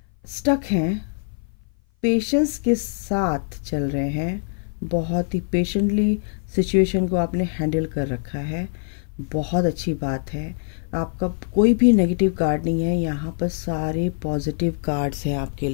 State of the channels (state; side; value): silent; right; 57 dB below the other